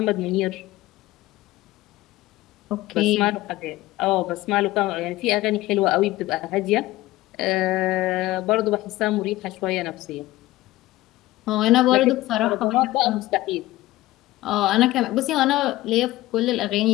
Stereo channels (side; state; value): right; quieter; 17.4 dB